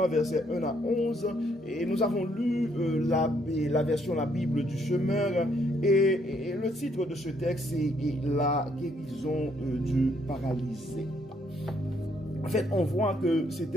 versets 1 à 11, et nous avons lu la version La Bible du Semeur, et le titre de ce texte est La guérison du paralysé. En fait, on voit que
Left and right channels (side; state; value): both; normal; correlation 0.70